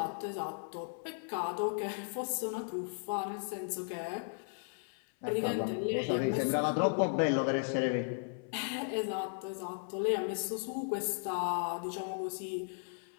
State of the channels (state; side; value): silent; right; 54 dB below the other